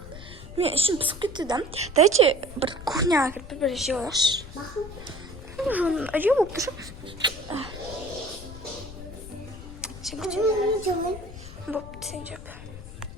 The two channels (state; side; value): noise; left; rumble, 13 dB below the sound